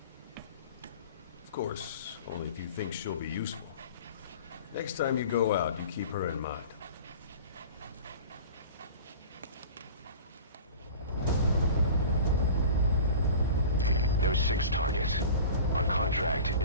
Of course, only if you think she'll be useful. Next time you go out, you keep her in mind. There's 6 targets. Our contract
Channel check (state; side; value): inverted; both; correlation -0.39